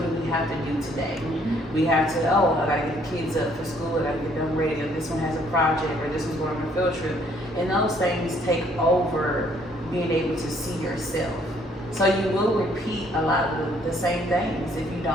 do we have to do today? We have to, I gotta get the kids up for school, I gotta get them ready, or this one has a project, or this one's going on a field trip. And those things take over being able to see yourself. So you will repeat a lot of the same things if you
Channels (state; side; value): normal; both; correlation 0.64